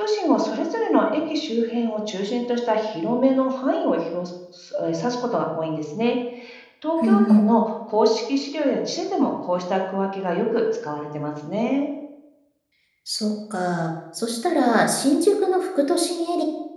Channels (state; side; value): identical; both; correlation 1.00